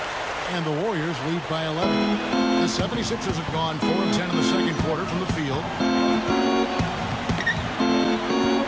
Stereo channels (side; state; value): both; identical; correlation 1.00